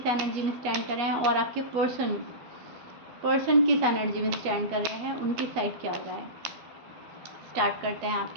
एनर्जी में स्टैंड कर रहे हैं और आपके पर्सन किस एनर्जी में स्टैंड कर रहे हैं, उनकी साइड क्या हो रहा है। स्टार्ट करते हैं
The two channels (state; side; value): late; left; 12 ms